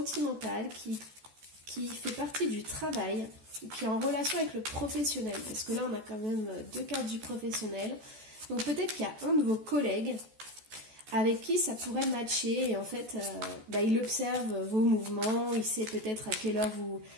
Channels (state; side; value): late; left; 14 ms